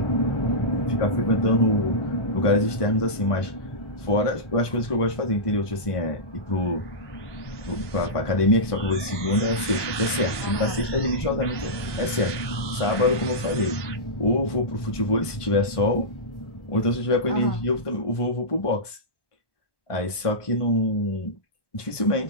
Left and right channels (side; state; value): right; late; 1.1 ms